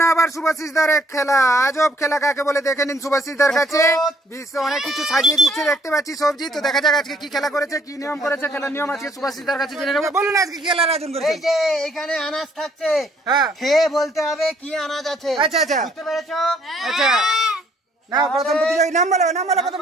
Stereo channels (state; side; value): normal; both; correlation 0.65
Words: আবার শুভাশিসদার এক খেলা, আজব খেলা কাকে বলে দেখে নিন শুভাশিসদার কাছে। বিশ্ব অনেক কিছু সাজিয়ে দিচ্ছে দেখতে পাচ্ছি সবজি। তো দেখা যাক আজকে কি খেলা করেছে, কি নিয়ম করেছে, খেলার নিয়ম আজকে শুভাশিসদার কাছে জেনে নেবো। বলুন আজকে কি খেলার আয়োজন করেছে? এই যে এখানে আনাজ থাকছে, হ্যাঁ খেয়ে বলতে হবে কি আনাজ আছে। আচ্ছা আচ্ছা বুঝতে পেরেছো? আচ্ছা না, প্রথম প্রতিযোগী নাম বলো, নাম বলো। প্রথম